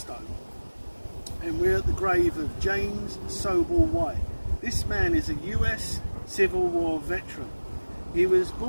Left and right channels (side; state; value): both; inverted; correlation -1.00